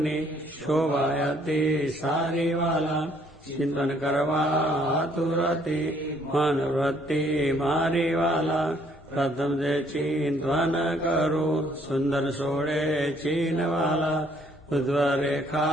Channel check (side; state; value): both; normal; correlation 0.64